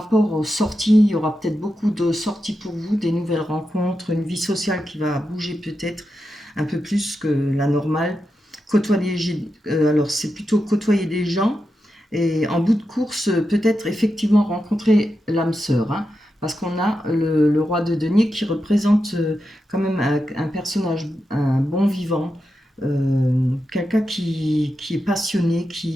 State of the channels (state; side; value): normal; both; correlation 0.88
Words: aux sorties, il y aura peut-être beaucoup de sorties pour vous, des nouvelles rencontres, une vie sociale qui va bouger peut-être un peu plus que la normale. Alors c'est plutôt côtoyer des gens et en bout de course, peut-être effectivement rencontrer l'âme sœur, hein, parce qu'on a le roi de denier qui représente quand même un personnage, un bon vivant, quelqu'un qui est passionné,